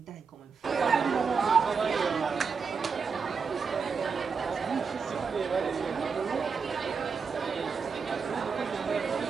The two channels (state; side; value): quieter; left; 5.5 dB